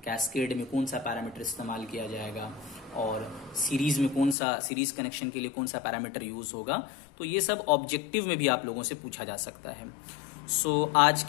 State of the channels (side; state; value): right; drops out; at 4.4 s